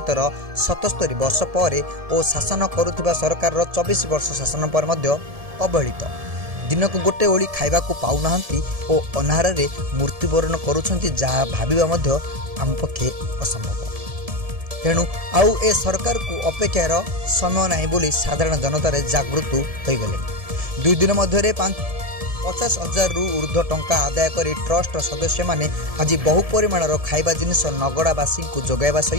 77 वर्ष पर और शासन करुवा सरकार 24 वर्ष शासन पर अवहेलित दिन को गोटे ओली खाइबा पाऊना और अनाहार मृत्युवरण करुँच जहाँ भाविबा आम पक्षे असंभव। तेणु आउ ए सरकार को अपेक्षार समय नहीं बोली साधारण जनतार जागृत हो गले। 2 दिन मध्य 50,000 रु ऊर्ध्व टंका आदाय कर ट्रस्ट सदस्य माने आज बहु परिमाणर खाइबा जिनिस नगड़ावासी को जोगाइबा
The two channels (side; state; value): left; late; 1.7 ms